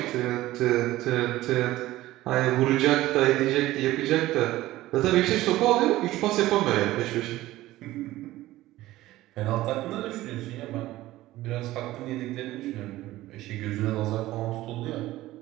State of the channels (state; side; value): quieter; left; 16.4 dB